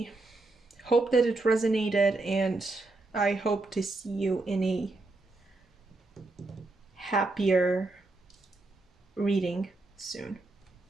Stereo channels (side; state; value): left; quieter; 3.2 dB